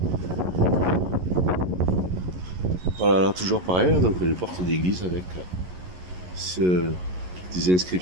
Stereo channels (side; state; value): left; late; 11 ms